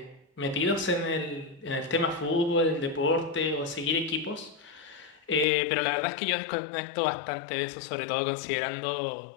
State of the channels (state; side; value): drops out; right; at 5.5 s